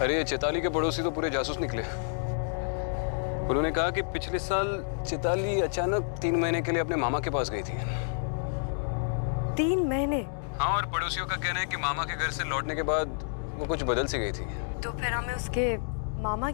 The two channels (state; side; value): silent; right; digital silence